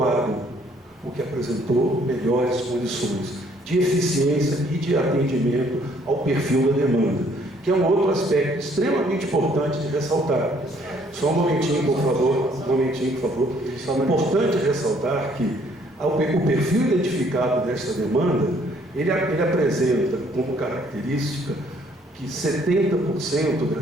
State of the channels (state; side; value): normal; both; correlation 0.63